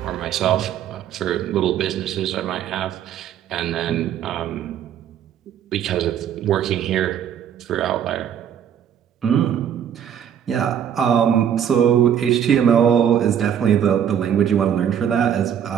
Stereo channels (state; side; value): quieter; left; 9.1 dB